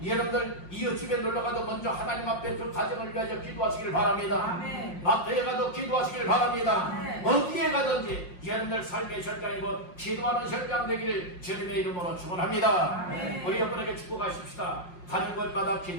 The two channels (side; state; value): right; late; 5.6 ms